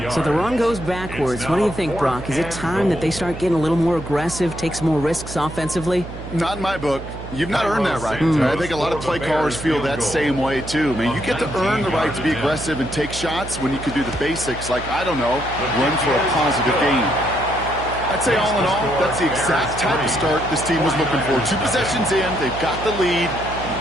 So the run goes backwards. What do you think, Brock? Is it time that they start getting a little more aggressive, take some more risks offensively? Not in my book. You've not earned that right. I think a lot of play callers feel that same way, too. I mean, you get to earn the right to be aggressive and take shots when you can do the basics, like, I don't know, run for a positive gain. I'd say all in all, that's the exact type of start this team was looking for. 2 possessions in, they've got the lead,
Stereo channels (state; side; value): noise; right; hum, 11 dB below the sound